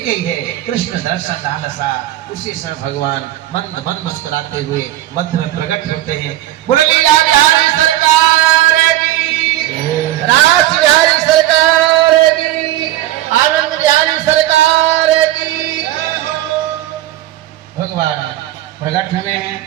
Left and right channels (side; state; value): left; quieter; 14.3 dB